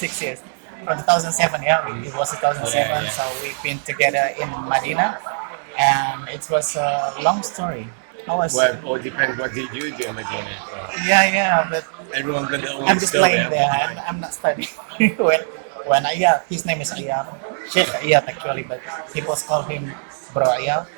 years. From 2007, yeah, it was 2007. Yeah. So we've been together in Medina, and it was a long story. I was, Well, it all depends what did you do in Medina. So yeah, but everyone got their own I'm just story. playing I've there. got I'm, mine. I'm not studying. when Ayaz, his name is Ayaz, Sheikh Ayaz actually, but people call him Bro Ayaz.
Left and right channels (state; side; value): silent; left; digital silence